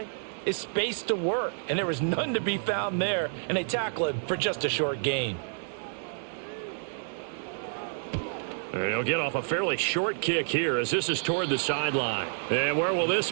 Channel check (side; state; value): left; silent; 59 dB below the other